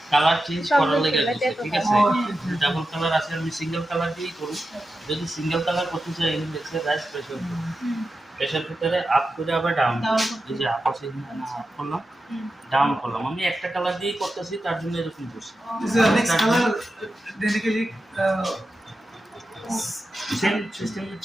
colour change করার লাগে ঠিক আছে double colour আছে আমি single colour দিয়েই করব যদি single colour করতে চাই এখানে দেখছে রাইস প্রেসার প্রেসার ভিতরে আপ করে আবার ডাউন এই যে আপ আছে আপ করলাম ডাউন করলাম আমি একটা কালার দিয়েই করতেছি তার জন্য এরকম করছি Is the next color basically same system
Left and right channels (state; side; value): normal; both; correlation 0.90